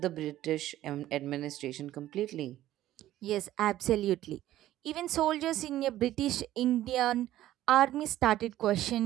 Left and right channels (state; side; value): quieter; left; 13.9 dB